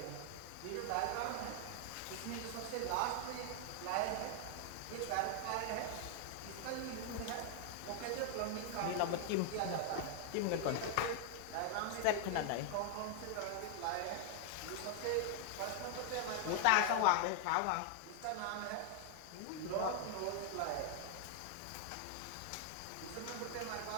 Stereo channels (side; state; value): both; different; correlation 0.00